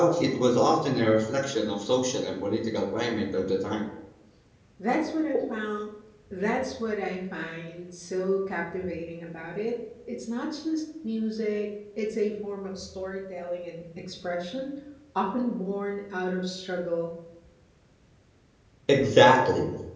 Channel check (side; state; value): both; identical; correlation 1.00